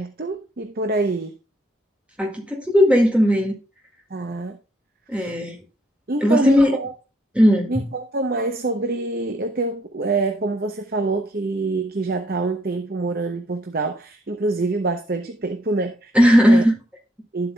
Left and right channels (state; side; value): normal; both; correlation 0.72